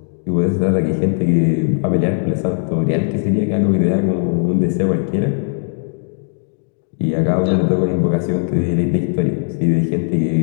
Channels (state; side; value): silent; right; 67 dB below the other